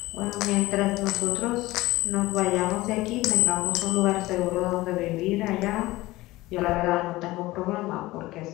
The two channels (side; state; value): right; quieter; 18.7 dB